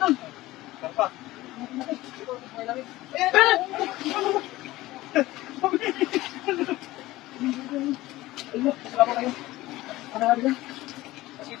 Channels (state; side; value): quieter; right; 17.7 dB